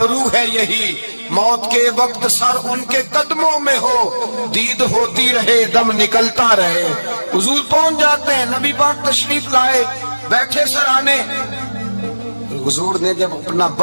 ہے یہی, موت کے وقت سر ان کے قدموں میں ہو, دید ہوتی رہے دم نکلتا رہے. حضور پہنچ جاتے ہیں, نبی پاک تشریف لائے, بیٹھے سرانے. حضور نے جب اپنا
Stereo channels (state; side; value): inverted; both; correlation -1.00